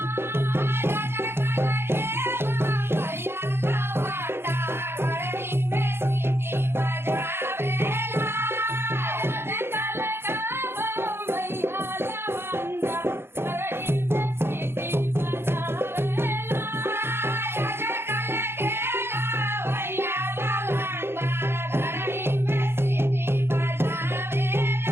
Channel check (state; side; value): late; left; 0.11 ms